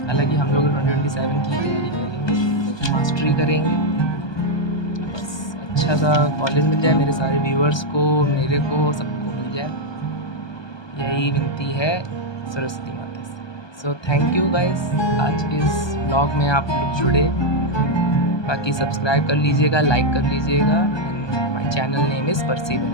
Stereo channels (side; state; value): right; late; 1.2 ms